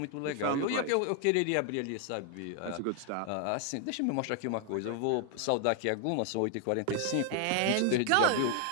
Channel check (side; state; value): both; different; correlation 0.00